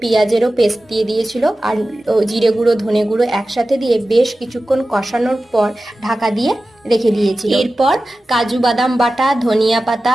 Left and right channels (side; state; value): both; normal; correlation 0.95